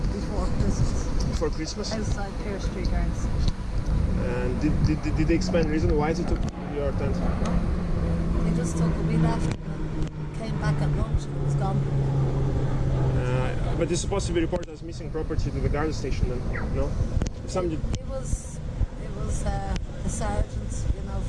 before Christmas. Before Christmas? Outside Pear Street Gardens. And did they explain the reason why they took your tent? They just took it. We left and came back at lunch and it was gone. But it's supposed to be reported as missing property to the guard station then, no? Somebody... It was a sergeant, you know,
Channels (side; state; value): both; identical; correlation 1.00